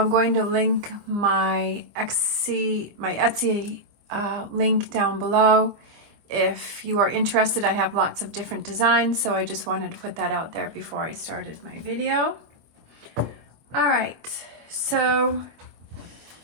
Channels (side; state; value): left; late; 25 ms